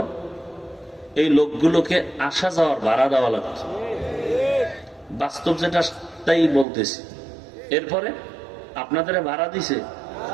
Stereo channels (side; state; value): left; drops out; at 6.7 s